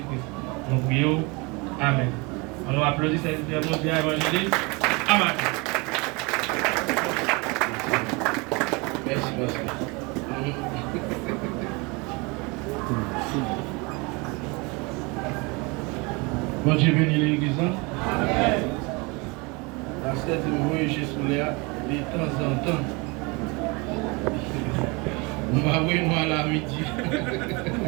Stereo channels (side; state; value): left; quieter; 27.7 dB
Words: Nous prions. Amen. On nous applaudit cette mondiale évangéliste. Amen. Merci, pasteur. Bon Dieu bénit l'église. Amen. Pasteur dit moi chez Souléa de temps en temps. Nous allons nous à la midi.